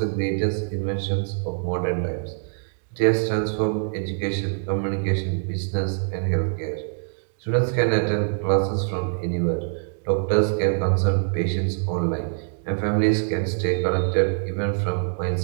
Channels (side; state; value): left; silent; digital silence